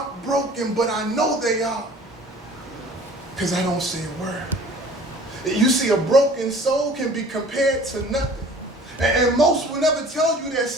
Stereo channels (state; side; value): normal; both; correlation 0.48